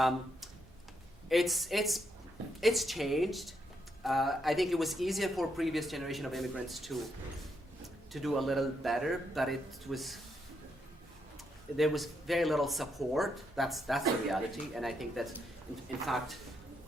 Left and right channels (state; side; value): normal; both; correlation 0.78